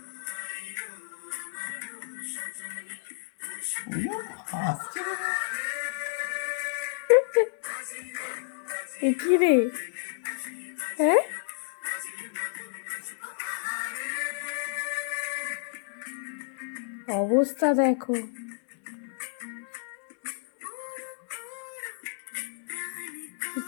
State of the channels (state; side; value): silent; right; digital silence